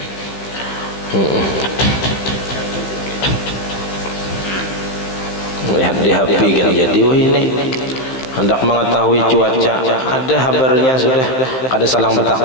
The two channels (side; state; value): right; late; 15 ms